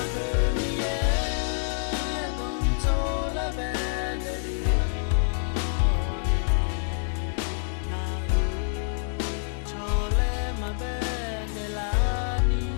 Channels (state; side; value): silent; right; digital silence